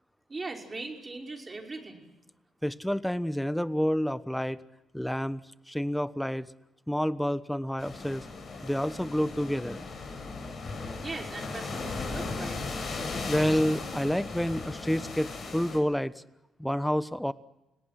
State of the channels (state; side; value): normal; both; correlation 0.97